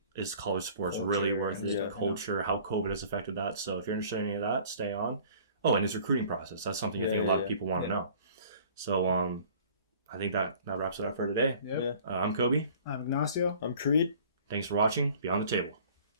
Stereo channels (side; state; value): both; inverted; correlation -0.50